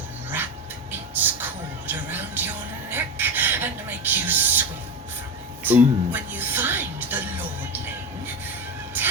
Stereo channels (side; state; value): both; normal; correlation 0.20